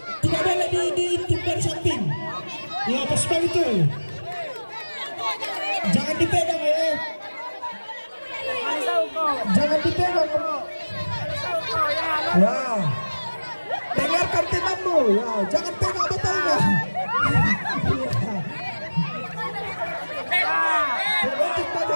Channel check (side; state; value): both; inverted; correlation -1.00